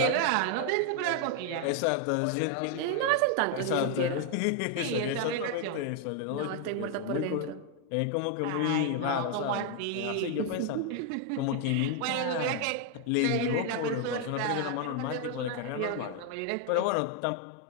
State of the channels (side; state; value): both; different; correlation 0.00